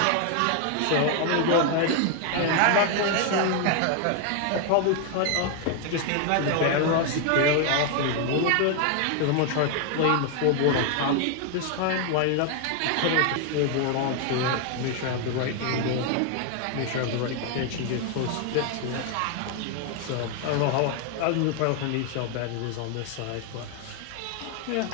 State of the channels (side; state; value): both; different; correlation 0.00